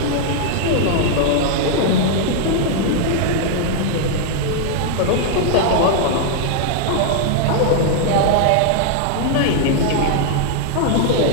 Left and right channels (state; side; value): different; both; correlation 0.00